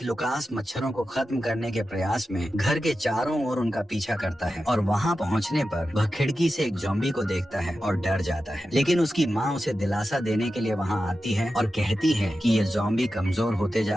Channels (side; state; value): both; normal; correlation 0.92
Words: लुकास मच्छरों को खत्म करने के प्रयास में घर के चारों ओर उनका पीछा करता है और वहाँ पहुँचने पर वह खिड़की से एक ज़ॉम्बी को देखता है और डर जाता है। लेकिन उसकी माँ उसे दिलासा देने के लिए वहाँ आती है और कहती है कि ये ज़ॉम्बी कमजोर होते